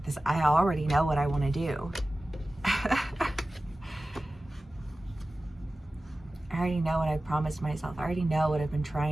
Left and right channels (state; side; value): normal; both; correlation 0.96